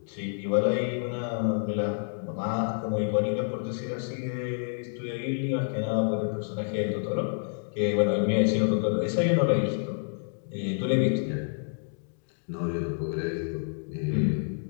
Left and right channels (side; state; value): right; silent; digital silence